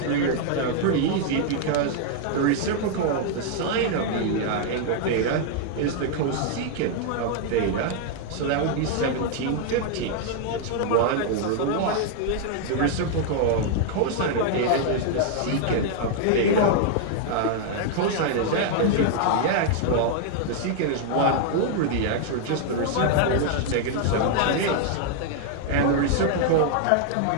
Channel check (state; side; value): different; both; correlation 0.00